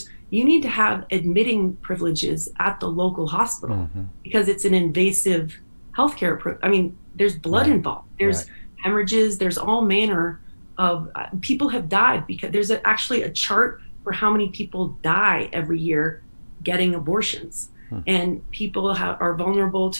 you need to have admitting privileges at the local hospital because it's an invasive healthcare. I mean, there's blood involved. There's hemorrhages. There's all manner of people have died because there's actually a chart for how many people die every year getting abortions, and people are vulnerable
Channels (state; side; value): inverted; both; correlation -1.00